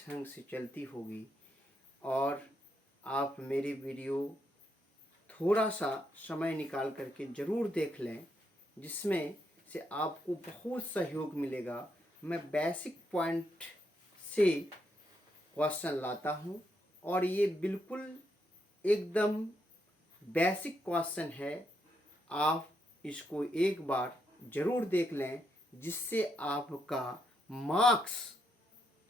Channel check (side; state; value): both; normal; correlation 0.79